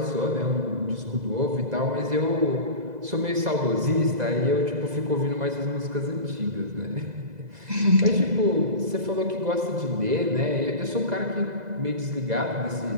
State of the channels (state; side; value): late; left; 2.0 ms